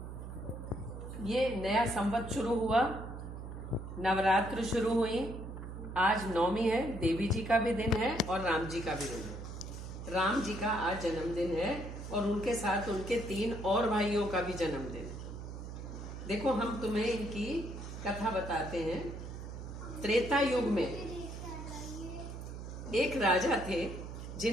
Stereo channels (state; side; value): noise; right; hum, 9 dB below the sound